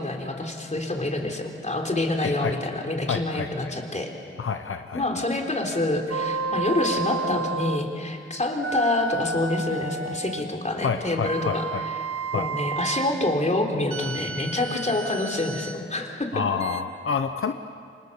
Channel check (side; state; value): both; normal; correlation 0.35